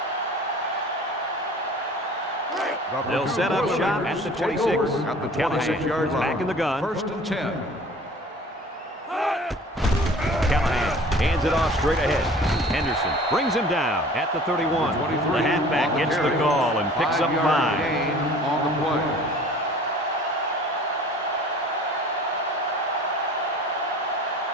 They'll set up shop at the 26. At the Callahan 26-yard is line. back in the gun. 1st and 10. Callahan hands it off straight ahead. Henderson brings him down at the 31. The halfback gets the call and picks up 5. Gain on the play.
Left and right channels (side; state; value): both; normal; correlation 0.47